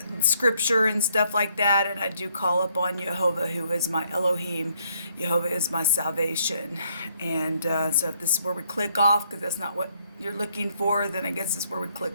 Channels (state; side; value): inverted; both; correlation -0.70